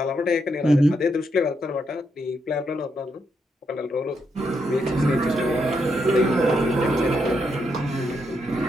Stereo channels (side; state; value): both; normal; correlation 0.79